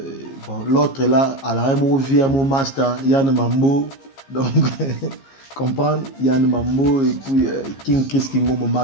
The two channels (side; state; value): right; late; 15 ms